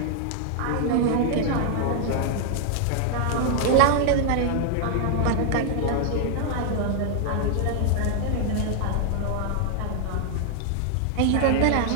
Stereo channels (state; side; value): different; both; correlation 0.00